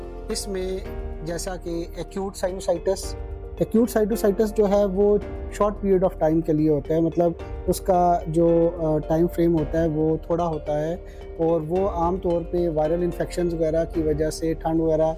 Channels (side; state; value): both; identical; correlation 1.00